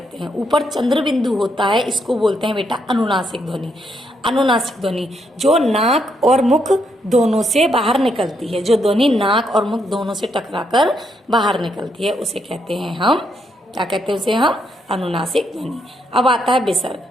हैं। ऊपर चंद्र बिंदु होता है, इसको बोलते हैं बेटा अनुनासिक ध्वनि। अनुनासिक ध्वनि जो नाक और मुख दोनों से बाहर निकलती है, जो ध्वनि नाक और मुख दोनों से टकराकर बाहर निकलती है, उसे कहते हैं हम, क्या कहते हैं उसे हम, अनुनासिक ध्वनि। अब आता है विसर्ग।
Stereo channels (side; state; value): both; normal; correlation 0.77